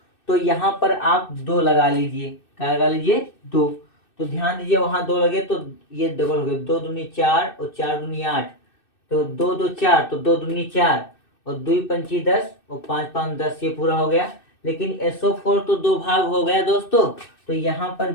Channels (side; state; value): right; late; 2.6 ms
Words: तो यहाँ पर आप 2 लगा लीजिए, क्या लगा लीजिए 2। तो ध्यान दीजिए वहां 2 लगे तो ये डबल हो गए, 2 दूनी 4 और 4 दूनी 8, तो 2 2 4, तो 2 दूनी 4 और 2 पंची 10 और 5 5 10, ये पूरा हो गया। लेकिन SO4 तो 2 भाग हो गया दोस्तों, तो यहाँ पर